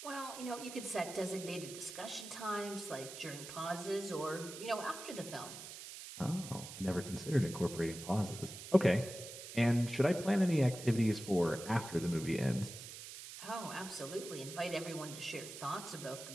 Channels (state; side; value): noise; right; hiss, 11 dB below the sound